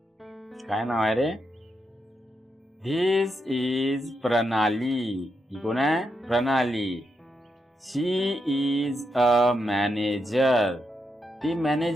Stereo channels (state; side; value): normal; both; correlation 0.83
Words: काय नाव आहे रे? धिस इज प्रणाली. ही कोण आहे? प्रणाली. शी इज अ मॅनेजर. ती